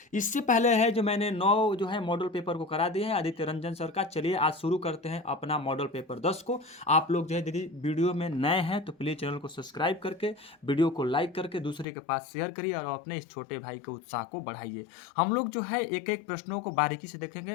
इससे पहले है जो मैंने 9 जो है मॉडल पेपर को करा दिए हैं आदित्य रंजन सर का। चलिए आज शुरू करते हैं अपना मॉडल पेपर 10 को। आप लोग जो है यदि वीडियो में नए हैं तो प्लीज चैनल को सब्सक्राइब करके वीडियो को लाइक करके दूसरे के पास शेयर करिए और अपने इस छोटे भाई के उत्साह को बढ़ाइए। हम लोग जो है एक एक प्रश्नों को बारीकी से देखेंगे,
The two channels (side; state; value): right; drops out; at 11.9 s